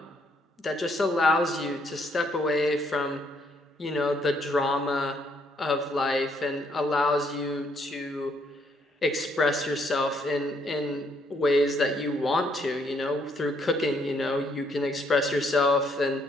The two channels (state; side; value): normal; both; correlation 0.70